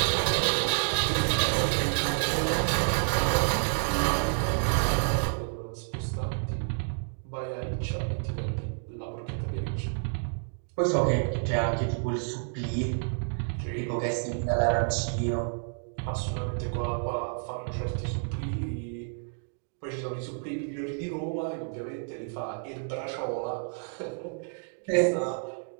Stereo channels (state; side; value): silent; left; 58 dB below the other